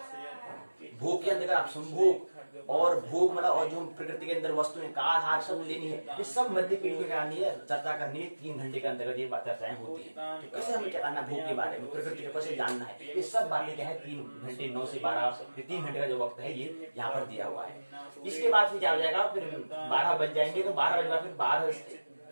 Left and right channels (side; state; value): both; inverted; correlation -1.00